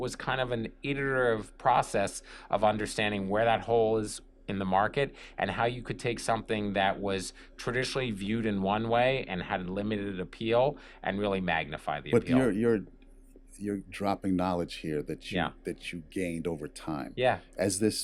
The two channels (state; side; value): identical; both; correlation 1.00